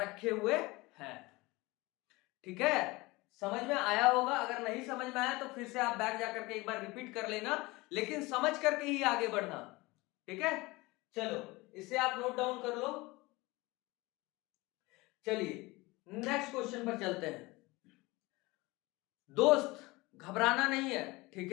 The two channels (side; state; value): right; quieter; 22.4 dB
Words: हुए हैं। ठीक है, समझ में आया होगा। अगर नहीं समझ में आया तो फिर से आप बैक जाकर के एक बार रिपीट कर लेना, लेकिन समझ करके ही आगे बढ़ना। ठीक है, चलो इसे आप नोट डाउन कर लो। चलिए नेक्स्ट क्वेश्चन पर चलते हैं। दोस्त घबराना नहीं है, ठीक